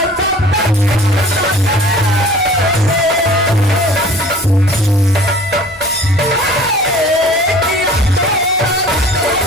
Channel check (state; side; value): normal; both; correlation 0.47